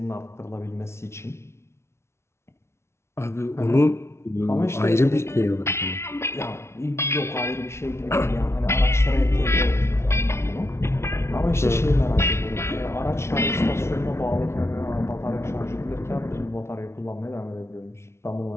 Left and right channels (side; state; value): right; late; 0.13 ms